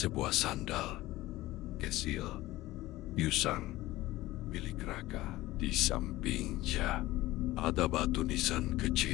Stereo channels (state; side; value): quieter; right; 17.5 dB